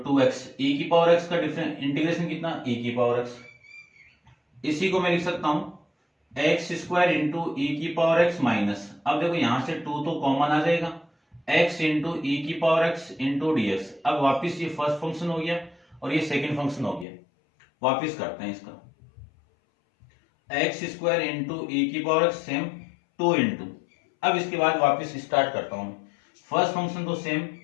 2x ई की पावर एक्स का इंटीग्रेशन कितना, ई की पावर एक्स। इसी को मैं लिख सकता हूं एक्स स्क्वायर इंटू ई की पावर एक्स माइनस, अब देखो यहां से 2 तो कॉमन आ जाएगा, x इंटू ई की power x into d x. अब वापिस ये फर्स्ट फंक्शन हो गया और ये सेकंड फंक्शन हो गया। वापिस करते हैं इसका, एक्स स्क्वायर इंटू ई की पावर एक्स सेम 2 इंटू, अब इसके बाद वापिस स्टार्ट करता हूं। फर्स्ट फंक्शन तो सेम,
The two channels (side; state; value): right; drops out; at 17.1 s